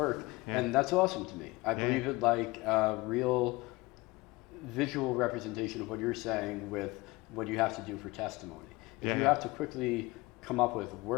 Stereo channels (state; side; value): quieter; right; 22.3 dB